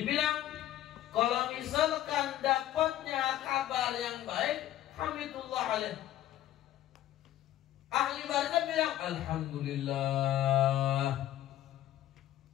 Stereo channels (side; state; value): right; quieter; 13.1 dB